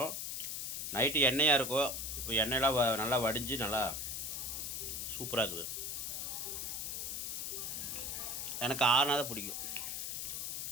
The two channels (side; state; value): left; noise; hiss, 3 dB below the sound